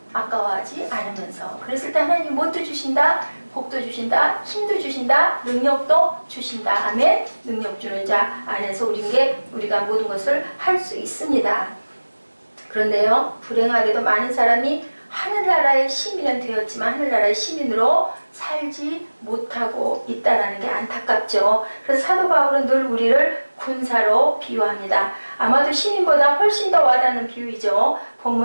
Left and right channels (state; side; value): inverted; both; correlation -1.00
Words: 아까워하지 않으면서. 그랬을 때 하나님이 뭣도 주신다? 복도 주신다, 힘도 주신다, 능력도 주신다. 아멘. 능력 주는 자 안에서 우리가 모든 것을 할 수 있습니다. 그런데요, 불행하게도 많은 사람이 하늘나라의 시민은 되었지만 하늘나라의 시민으로 살지 못하고 있다는 게 안타깝죠. 그래서 사도 바울은 늘 우리를 군사로 비유합니다. 아마도 시민보다 훨씬 더 와닿는 비유이죠.